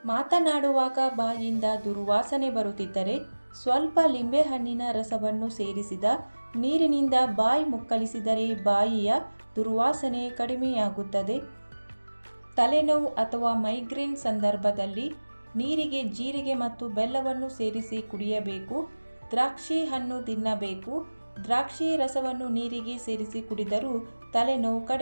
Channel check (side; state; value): both; inverted; correlation -1.00